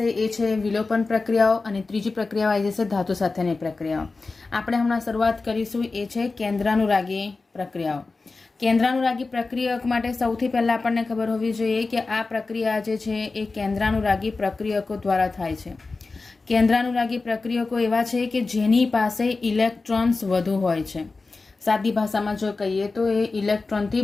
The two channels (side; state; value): right; quieter; 3.8 dB